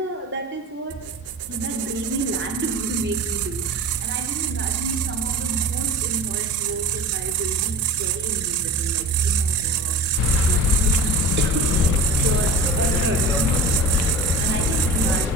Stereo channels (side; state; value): both; normal; correlation 0.34